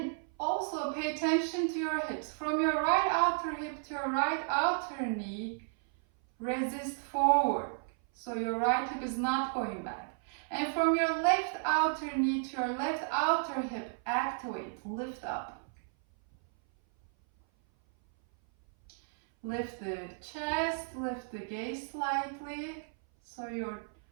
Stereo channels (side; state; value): left; silent; 56 dB below the other